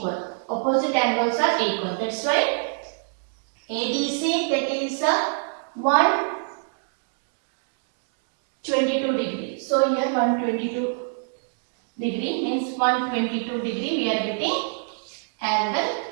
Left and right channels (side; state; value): left; silent; digital silence